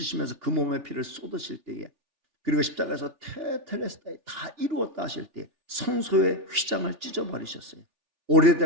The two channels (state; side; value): late; left; 3.4 ms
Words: 그 몸의 피를 쏟으실 때에 그리고 십자가에서 테텔레스타이 다 이루었다 하실 때 성소의 휘장을 찢어버리셨어요.